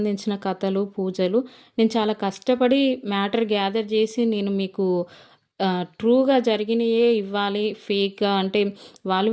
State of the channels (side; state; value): both; identical; correlation 1.00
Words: కథలు, పూజలు. నేను చాలా కష్టపడి మ్యాటర్ గ్యాదర్ చేసి నేను మీకు ట్రూగా జరిగినయే ఇవ్వాలి. ఫేక్గా అంటే వాళ్ళు